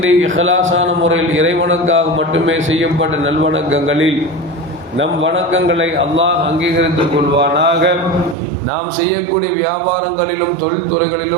இஹ்லாஸான முறையில் இறைவனுக்காக மட்டுமே செய்யப்பட்ட நல்வணக்கங்களில் நம் வணக்கங்களை அல்லாஹ் அங்கீகரித்துக் கொள்வானாக. நாம் செய்யக்கூடிய வியாபாரங்களிலும்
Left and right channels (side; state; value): left; drops out; at 8.3 s